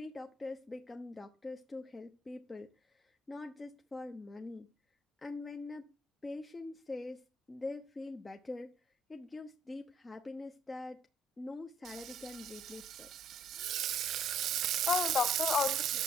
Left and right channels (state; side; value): normal; both; correlation 0.64